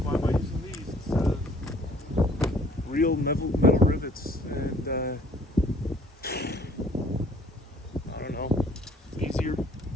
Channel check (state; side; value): normal; both; correlation 0.58